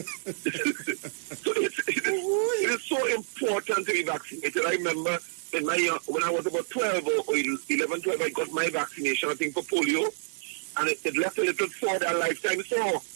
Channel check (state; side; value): silent; left; digital silence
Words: it is so important to be vaccinated. I remember when I was about 12 or 11, 12, I got my vaccination, I think, for polio, and it left a little sore that lifetime sore.